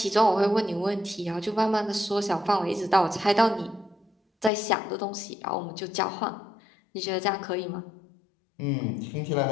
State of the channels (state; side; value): drops out; right; at 4.5 s